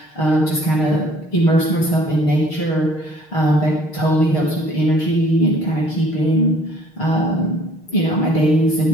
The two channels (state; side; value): late; right; 6.5 ms